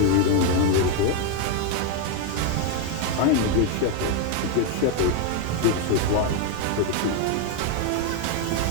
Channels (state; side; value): different; both; correlation 0.01